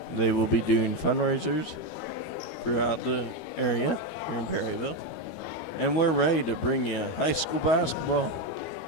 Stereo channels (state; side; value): late; right; 12 ms